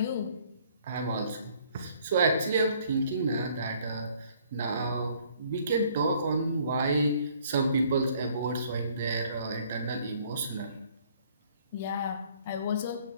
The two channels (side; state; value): both; inverted; correlation -0.60